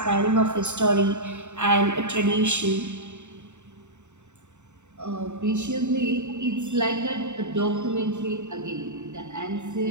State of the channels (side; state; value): left; late; 0.84 ms